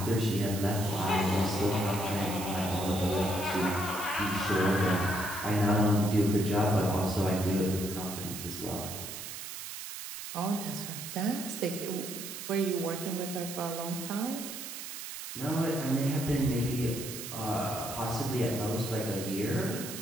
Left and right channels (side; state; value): right; noise; hiss, 8 dB below the sound